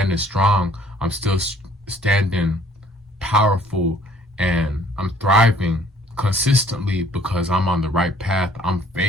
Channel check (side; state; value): both; normal; correlation 0.59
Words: strong. I'm still standing powerful, and I'm thriving consistently because I'm on the right path. I'm